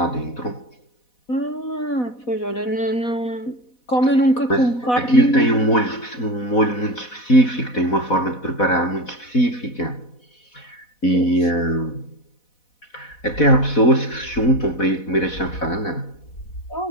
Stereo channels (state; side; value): late; right; 4.1 ms